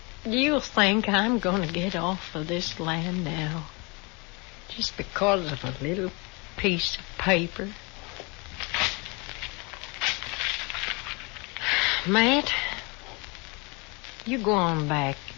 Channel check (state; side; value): quieter; right; 29.0 dB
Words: you think I'm going to get off of this land now? Just because of a little piece of paper? Matt, you go on back.